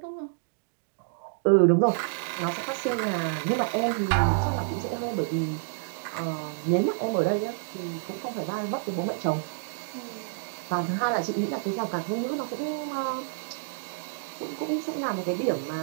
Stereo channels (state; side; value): silent; left; digital silence